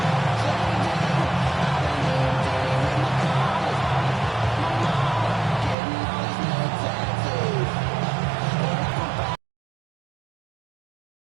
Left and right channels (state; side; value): drops out; left; at 5.8 s